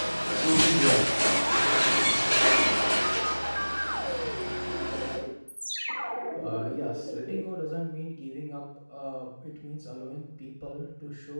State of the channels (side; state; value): both; inverted; correlation -1.00